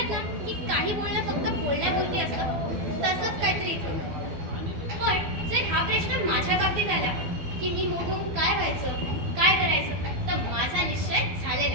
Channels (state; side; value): late; left; 12 ms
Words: ना की काही बोलणं फक्त बोलण्यापुरती असतं, तसंच काहीतरी इथं. पण जर हा प्रश्न माझ्या बाबतीत आला की मी मोठं होऊन काय व्हायचं, काय करायचं, तर माझा निश्चय झालेला